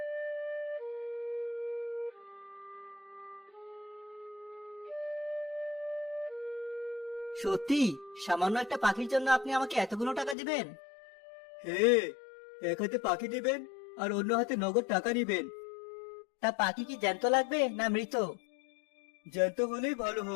সত্যি? সামান্য একটা পাখির জন্য আপনি আমাকে এতগুলো টাকা দিবেন? হে, এক হাতে পাখি দিবেন আর অন্য হাতে নগদ টাকা নিবেন। তা পাখি কি জ্যান্ত লাগবে না মৃত? জ্যান্ত হলেই ভালো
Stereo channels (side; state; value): right; drops out; at 10.4 s